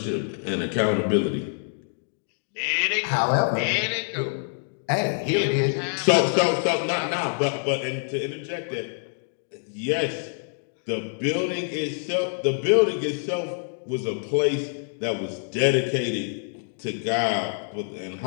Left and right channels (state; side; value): silent; right; digital silence